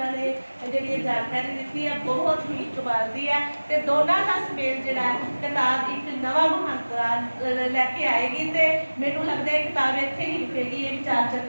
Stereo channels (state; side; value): inverted; both; correlation -1.00